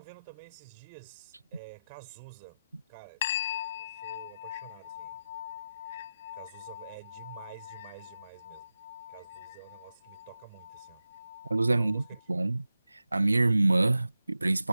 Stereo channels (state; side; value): inverted; both; correlation -0.93